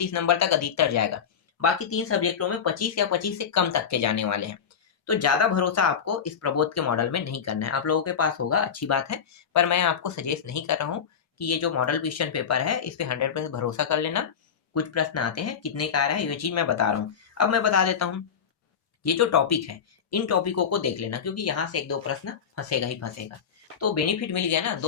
नंबर तक अधिकतर जाएगा। बाकी 3 सब्जेक्टों में 25 या 25 से कम तक के जाने वाले हैं। तो ज्यादा भरोसा आपको इस प्रबोध के मॉडल में नहीं करना है। आप लोगों के पास होगा, अच्छी बात है, पर मैं आपको सजेस्ट नहीं कर रहा हूँ कि ये जो मॉडल क्वेश्चन पेपर है इस पे 100% भरोसा कर लेना। कुछ प्रश्न आते हैं, कितने का आ रहा है ये चीज मैं बता रहा हूँ। अब मैं बता देता हूँ ये जो टॉपिक है, इन टॉपिकों को देख लेना, क्योंकि यहाँ से 1-2 प्रश्न फंसेगा ही फंसेगा। तो बेनिफिट मिल गया ना,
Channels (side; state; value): right; quieter; 7.2 dB